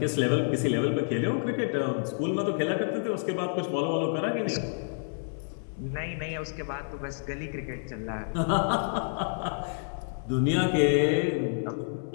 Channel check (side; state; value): right; silent; digital silence